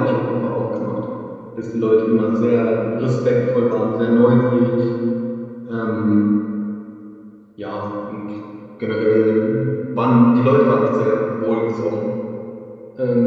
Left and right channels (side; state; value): both; identical; correlation 1.00